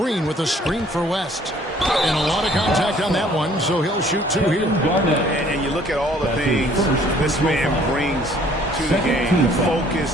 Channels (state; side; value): normal; both; correlation 0.58